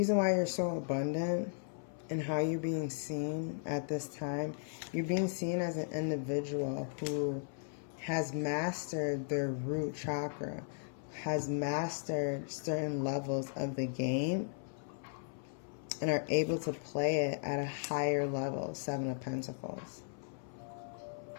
why you're so abundant and how you're being seen at this time, you're being seen as an individual who has mastered their root chakra, has mastered certain levels of the game, and are able to play it at a higher level, 7 of Pentacles.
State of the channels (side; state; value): right; silent; 53 dB below the other